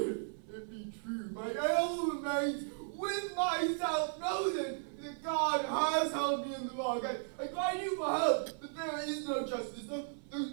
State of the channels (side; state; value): left; silent; 54 dB below the other